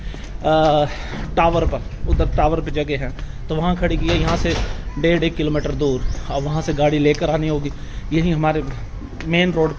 टावर पर, उधर टावर पे जगह है तो वहाँ खड़ी की है, यहाँ से 1.5 किलोमीटर दूर। अब वहाँ से गाड़ी लेकर आनी होगी। यही हमारे मेन रोड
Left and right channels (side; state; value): both; identical; correlation 1.00